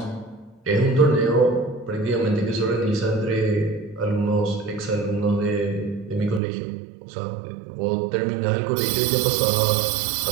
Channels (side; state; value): left; drops out; at 6.4 s